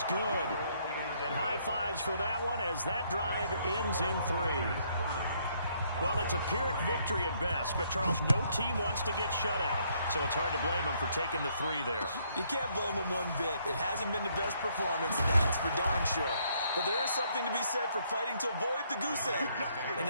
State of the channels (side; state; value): both; inverted; correlation -0.69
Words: good. And high fives for that one as that drive ends in 3. Well, it's a Pyrrhic victory at best, but, Charles, no team wants to get shut out, so it's hard to blame them for taking the 3 there. You can't blame them one bit. It hasn't been the best performance, that's for darn sure. But there is something to be said for fighting to avoid the goose egg, and